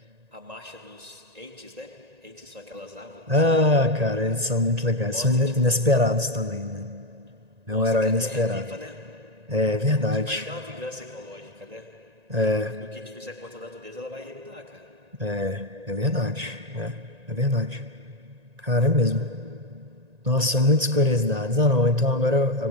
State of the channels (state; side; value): late; left; 1.9 ms